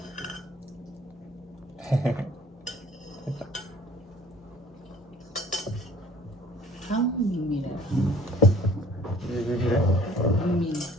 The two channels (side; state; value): both; normal; correlation 0.52